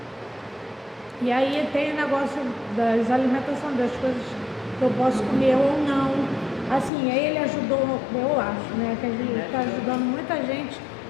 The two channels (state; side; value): drops out; right; at 6.9 s